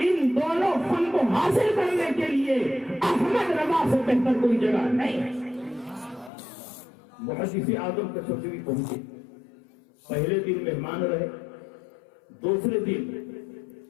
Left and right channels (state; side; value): drops out; right; at 6.3 s